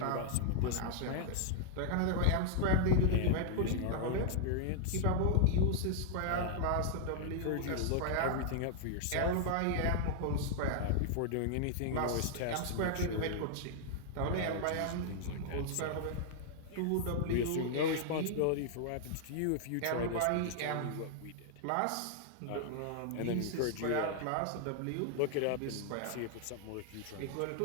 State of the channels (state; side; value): different; both; correlation -0.01